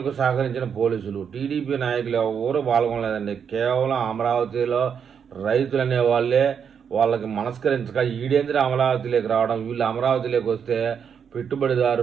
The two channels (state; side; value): quieter; left; 7.3 dB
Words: సహకరించిన పోలీసులు. టీడీపీ నాయకులు ఎవరు పాల్గొనలేదండి. కేవలం అమరావతిలో రైతులు అనే వాళ్ళే వాళ్ళకి మనస్కరించక ఈడేంద్ర అమరావతిలోకి రావడం, వీళ్ళు అమరావతిలోకి వస్తే